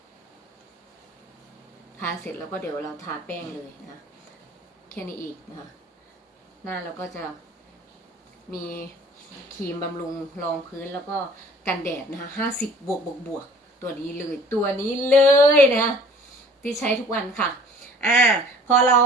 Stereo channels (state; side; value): normal; both; correlation 0.50